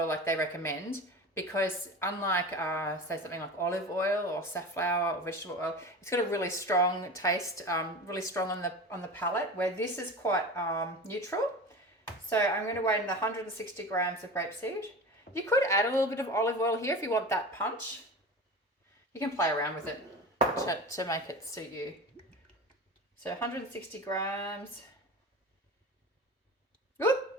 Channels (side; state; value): both; normal; correlation 0.31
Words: like they recommend, because unlike say something like olive oil or safflower or vegetable oil, it's got a really strong taste, really strong on the palate, where this is quite neutral. So I'm going to weigh in the 160 grams of grapeseed. You could add a little bit of olive oil here if you want that punch. You can play around with it to make it suit you. So 160 grams. Whoop.